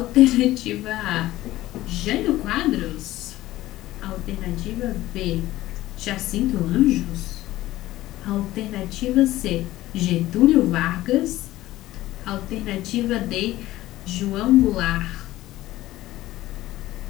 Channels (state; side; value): quieter; right; 16.1 dB